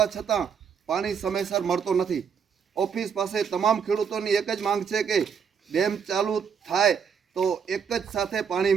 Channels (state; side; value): quieter; left; 6.9 dB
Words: છતાં પાણી સમયસર મળતો નથી. ઓફિસ પાસે તમામ ખેડૂતોની એક જ માંગ છે કે ડેમ ચાલુ થાય તો એક જ સાથે